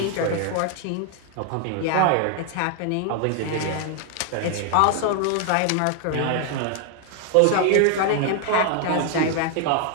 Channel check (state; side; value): different; both; correlation 0.00